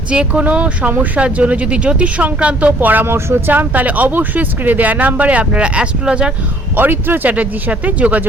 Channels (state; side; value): normal; both; correlation 0.59